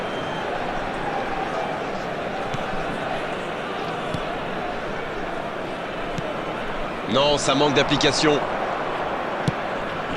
Non, ça manque d'application.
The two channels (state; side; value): identical; both; correlation 1.00